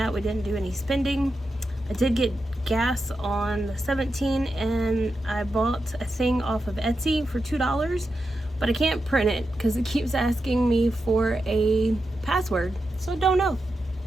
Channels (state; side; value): normal; both; correlation 0.88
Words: we didn't do any spending. I did get gas on the 17th, and I bought a thing off of Etsy for $2, but I can't print it because it keeps asking me for a password, so don't know.